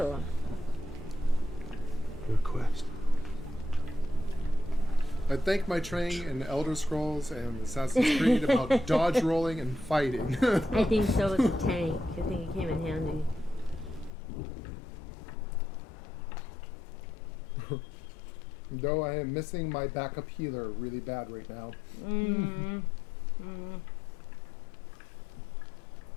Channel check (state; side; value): drops out; right; at 14.1 s